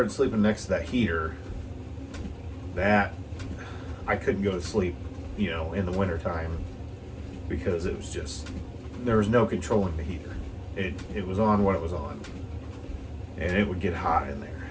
sleeping next to that heater, that I couldn't go to sleep, in the wintertime, because it was just, there was no controlling the heater. It was on what it was on, and it would get hot in there,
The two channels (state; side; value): identical; both; correlation 1.00